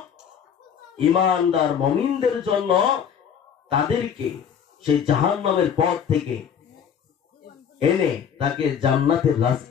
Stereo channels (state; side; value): quieter; right; 7.9 dB